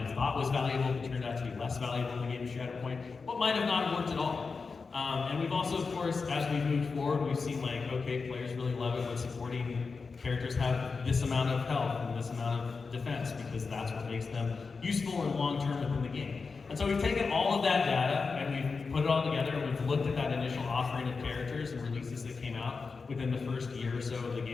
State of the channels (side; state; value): right; quieter; 4.7 dB